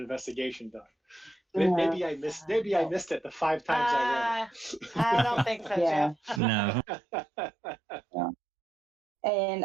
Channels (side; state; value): left; drops out; at 6.4 s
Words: done. Maybe I missed it the 5 times I read it. I don't think so, Yeah. Jeff. No.